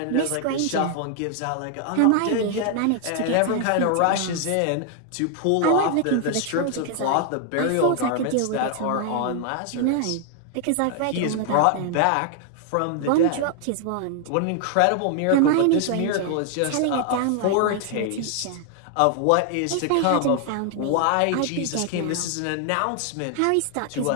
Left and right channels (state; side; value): different; both; correlation 0.00